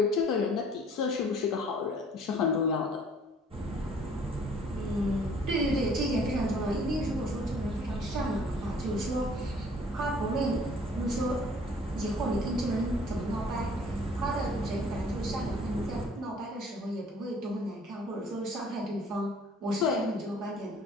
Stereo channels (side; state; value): both; normal; correlation 0.55